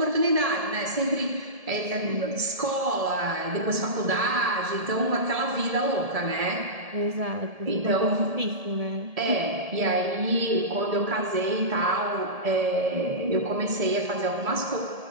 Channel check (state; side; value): late; left; 1.7 ms